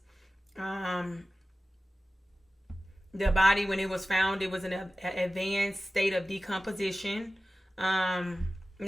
The body, when it was found, it was in an advanced state of decomposition. Now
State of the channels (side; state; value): both; normal; correlation 0.96